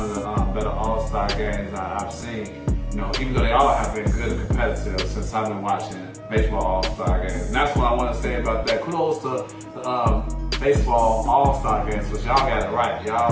of the better All-Star games I've seen. You know, even though they all have been good and competitive since I've been watching baseball All-Star games. And that's what I want to say about that. Kudos to baseball All-Star games, because y'all got it right.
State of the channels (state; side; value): identical; both; correlation 1.00